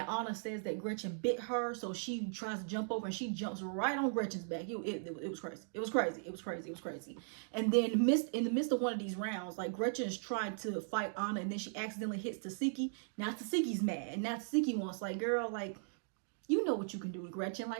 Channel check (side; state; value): left; silent; digital silence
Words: Anna says that Gretchen bit her, so she tries to jump over and she jumps right on Gretchen's back. It was crazy. It was crazy. It was crazy. It was crazy. And then in the midst of one of these rounds, like, Gretchen is trying to fight Anna, and then she accidentally hits Tasiki. Now Tasiki's mad, and now Tasiki wants, like, girl, like, you know what you can do with Gretchen.